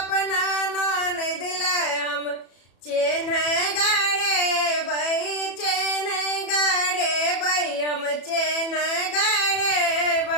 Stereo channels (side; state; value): right; late; 34 ms